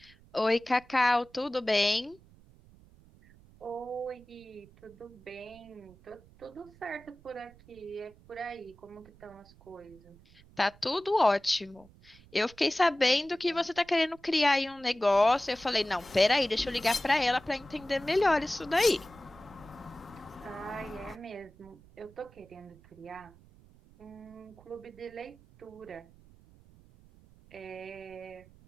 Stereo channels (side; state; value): right; noise; rumble, 25 dB below the sound